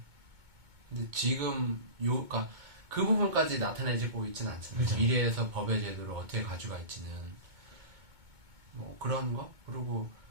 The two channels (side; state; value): left; late; 2.2 ms